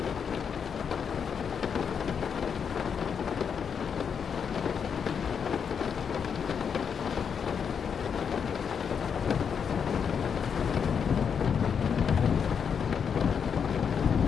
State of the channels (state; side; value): quieter; right; 6.9 dB